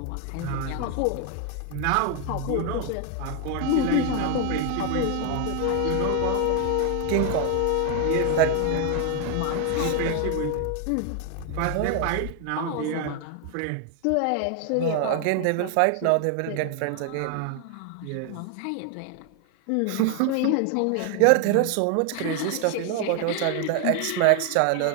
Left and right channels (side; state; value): both; different; correlation 0.01